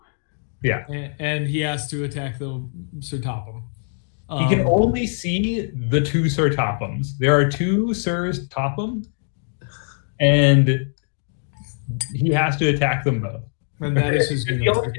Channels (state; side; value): silent; right; 64 dB below the other